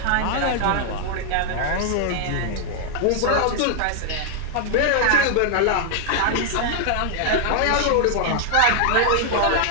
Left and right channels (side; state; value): both; different; correlation 0.00